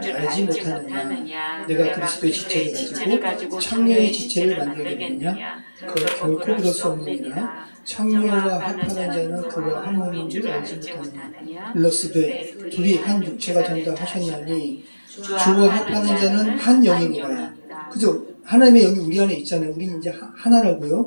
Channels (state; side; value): inverted; both; correlation -1.00